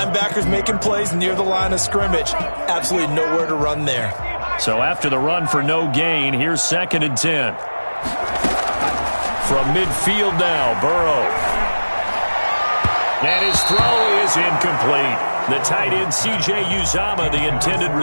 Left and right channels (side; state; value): both; inverted; correlation -1.00